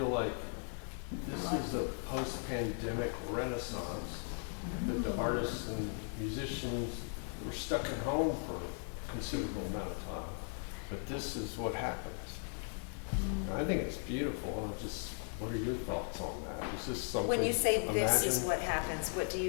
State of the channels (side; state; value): right; silent; 53 dB below the other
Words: like this is a post-pandemic renaissance, that the artists and musicians were stuck at home for a considerable amount of time. But this is what happens. I think it's beautiful. What are your thoughts on that? Is this something? When you say this is imagine- what happens, what do